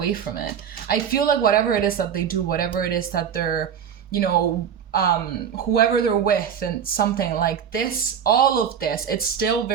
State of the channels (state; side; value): quieter; left; 8.2 dB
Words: from it. I feel like whatever it is that they do, whatever it is that they're, you know, whoever they're with and something like this, all of this, it's still